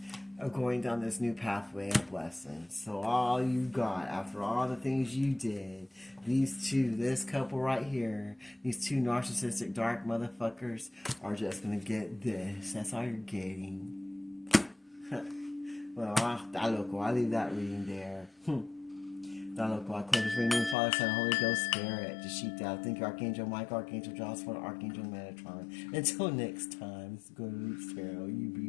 of going down this new pathway of blessings. So all you got, after all the things you did, these two, this couple right here, these two narcissistic dark motherfuckers are just going to get this. That's all you're getting. Well, I'll leave that reading there. I close this reading, Father, Son, Holy Ghost, Spirit, Dashita. Thank you, Archangel Michael, Archangel Joshua, Archangel Metatron. Until next time, this is Good Roots Tarot. You be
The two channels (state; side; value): drops out; right; at 20.8 s